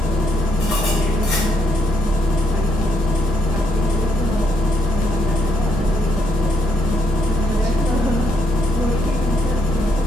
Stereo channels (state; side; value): normal; both; correlation 0.74